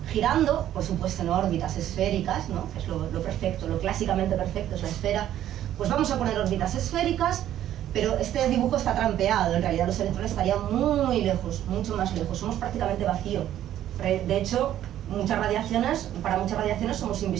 girando, por supuesto en órbitas esféricas, ¿no? Que es lo perfecto, lo clásicamente perfecto es la esfera. Pues vamos a poner órbitas esféricas, pero este dibujo está trampeado. En realidad los electrones estarían muy lejos, mucho más lejos. Somos prácticamente vacío. De hecho, para muchas radiaciones somos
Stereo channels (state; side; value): quieter; left; 11.9 dB